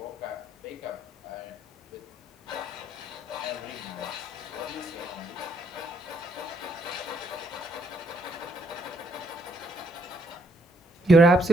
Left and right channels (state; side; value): normal; both; correlation 0.72